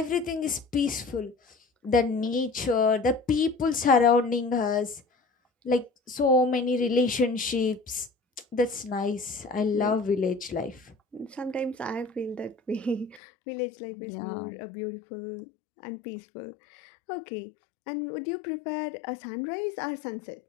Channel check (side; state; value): right; drops out; at 13.2 s